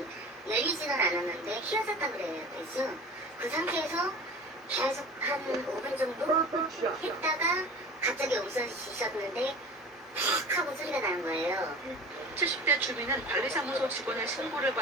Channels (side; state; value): both; normal; correlation 0.37